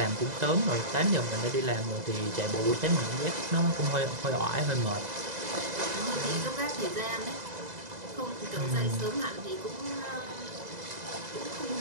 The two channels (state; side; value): late; left; 2.0 ms